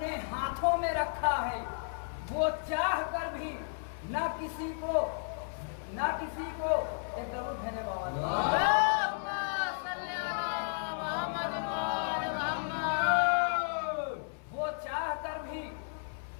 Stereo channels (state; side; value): silent; right; 56 dB below the other